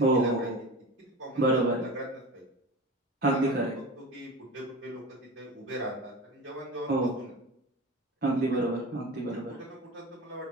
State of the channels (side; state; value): both; normal; correlation 0.31